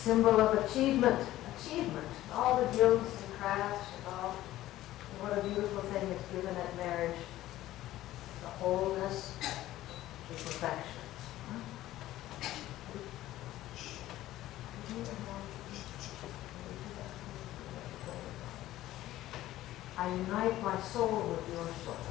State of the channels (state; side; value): quieter; right; 14.9 dB